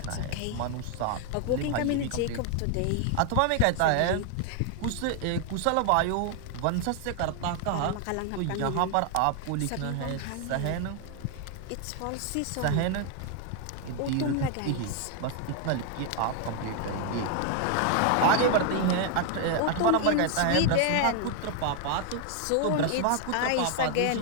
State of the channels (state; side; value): different; both; correlation 0.00